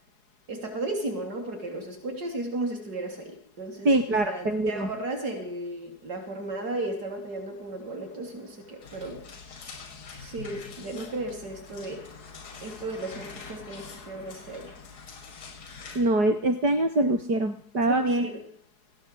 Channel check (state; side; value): late; left; 4.8 ms